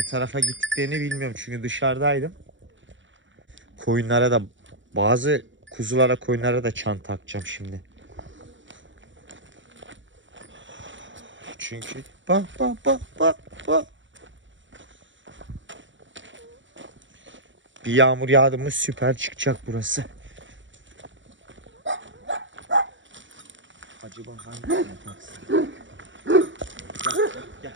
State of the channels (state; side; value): late; left; 0.55 ms